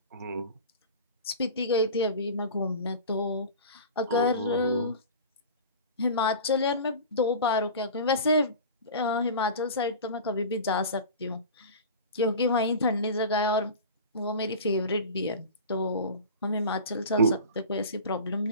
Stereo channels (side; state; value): both; inverted; correlation -0.34